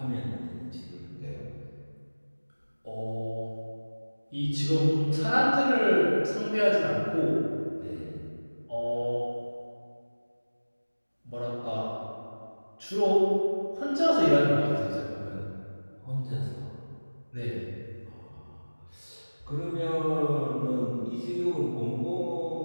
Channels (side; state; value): both; inverted; correlation -1.00